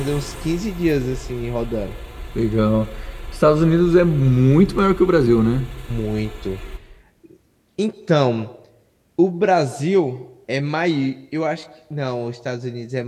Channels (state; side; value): identical; both; correlation 1.00